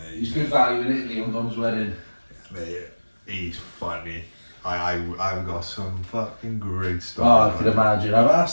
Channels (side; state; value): both; inverted; correlation -1.00